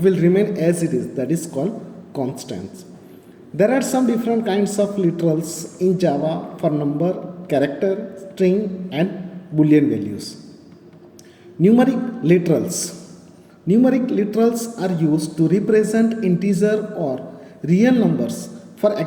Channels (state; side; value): identical; both; correlation 1.00